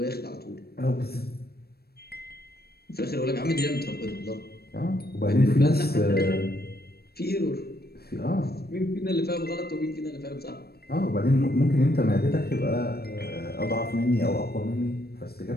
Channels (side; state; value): right; late; 0.46 ms